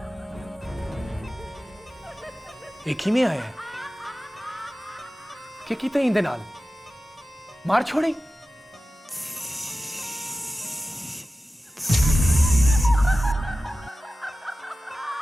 एक ही में आया है कि किते इंदे नाल मार छोड़ी।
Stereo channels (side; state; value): both; normal; correlation 0.95